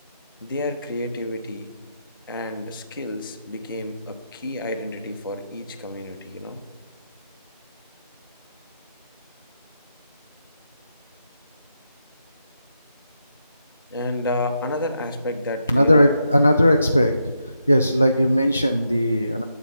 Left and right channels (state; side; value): inverted; both; correlation -0.83